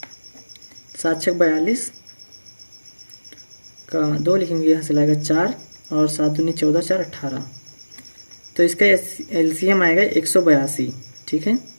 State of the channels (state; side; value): inverted; both; correlation -1.00